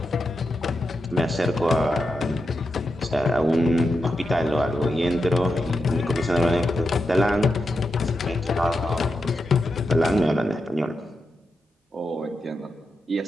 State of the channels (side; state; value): both; normal; correlation 0.87